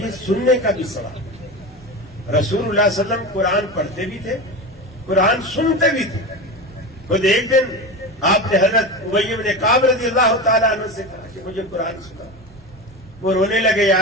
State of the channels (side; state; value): both; normal; correlation 0.24